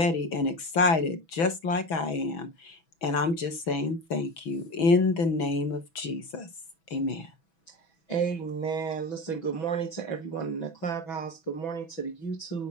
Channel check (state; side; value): late; right; 6.1 ms